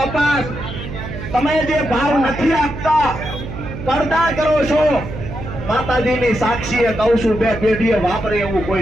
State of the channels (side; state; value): right; noise; hum, 9 dB below the sound